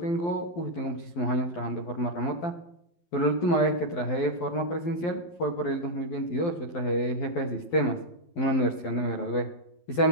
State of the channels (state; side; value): late; right; 12 ms